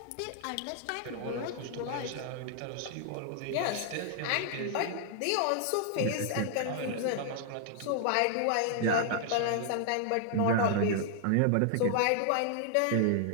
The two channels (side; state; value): both; different; correlation 0.00